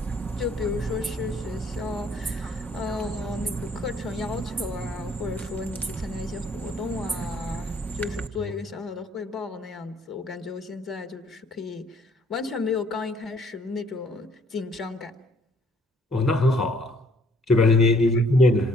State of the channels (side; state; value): both; normal; correlation 0.62